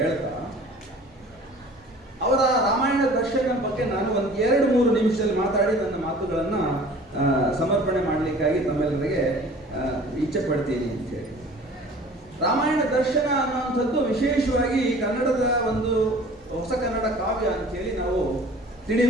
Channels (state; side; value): normal; both; correlation 0.47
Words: ಅವರ ರಾಮಾಯಣ ದರ್ಶನ ಬಗ್ಗೆ ನಾನು ಒಂದು 2-3 ನಿಮಿಷದಲ್ಲಿ ಮಾತಾಡಿ ನನ್ನ ಮಾತುಗಳನ್ನು ಸಮರ್ಪಣೆ ಮಾಡಲಿಕ್ಕಾಗಿ ತಮ್ಮೆಲ್ಲರಿಗೆ ಇಚ್ಛೆ ಪಡ್ತೀನಿ ಅಂತ ಹೇಳಿ. ರಾಮಾಯಣ ದರ್ಶನ ಅನ್ನುವಂಥದ್ದು ವಿಶೇಷವಾಗಿ ಕನ್ನಡದ ಒಂದು ಹೊಸ ಕನ್ನಡ ಕಾವ್ಯ ಅಂತ ಹೇಳಿ ನಾವು